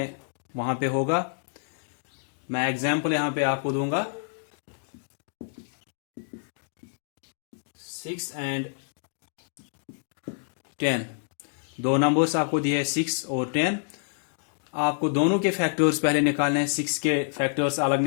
वहां पे होगा। मैं एग्जाम्पल यहां पे आपको दूंगा। 6 एंड 10 दो नंबर्स आपको दिए हैं 6 और 10। आपको दोनों के फैक्टर्स पहले निकालने हैं। 6 के फैक्टर्स अलग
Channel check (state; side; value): silent; right; digital silence